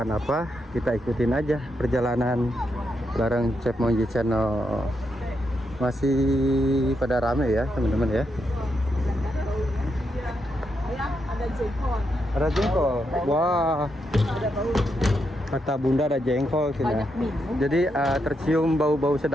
apa, kita ikutin aja perjalanan bareng Chef Monji Channel. Masih pada rame ya teman-teman ya. Ada jengkol. Ada jengkol. Wah. Ada bau. Kata Bunda ada jengkol sini. Banyak minum. Jadi tercium bau-bau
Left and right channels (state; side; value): normal; both; correlation 0.82